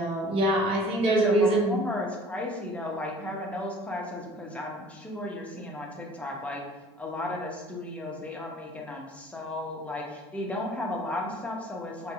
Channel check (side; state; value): both; normal; correlation 0.49